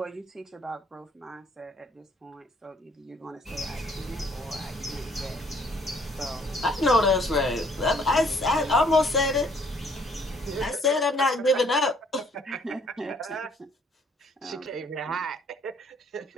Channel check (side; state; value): both; normal; correlation 0.62